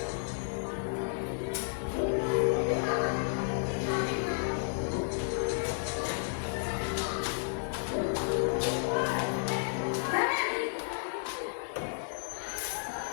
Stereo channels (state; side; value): silent; right; digital silence